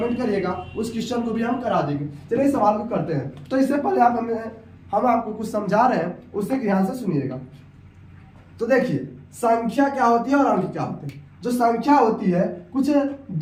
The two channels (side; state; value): both; identical; correlation 1.00